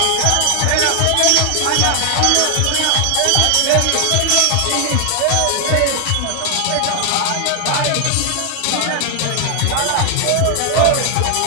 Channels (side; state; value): both; different; correlation 0.00